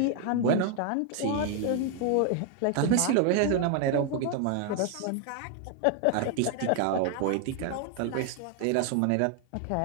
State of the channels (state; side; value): different; both; correlation 0.00